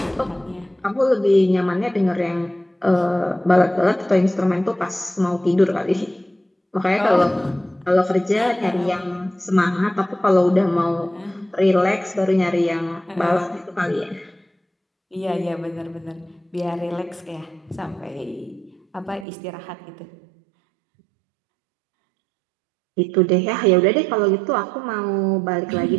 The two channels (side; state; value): left; drops out; at 19.2 s